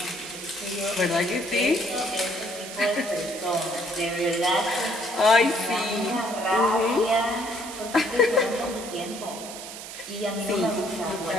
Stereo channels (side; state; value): right; noise; hiss, 11 dB below the sound